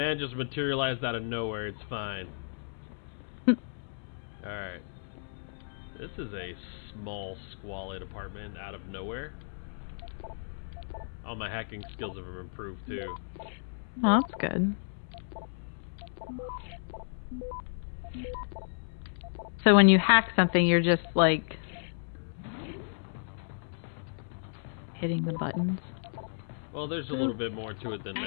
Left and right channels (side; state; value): right; silent; 56 dB below the other